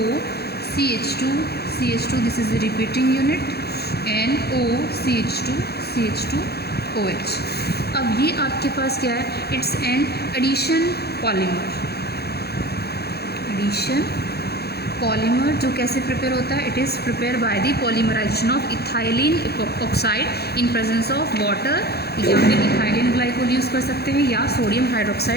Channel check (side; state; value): right; late; 0.47 ms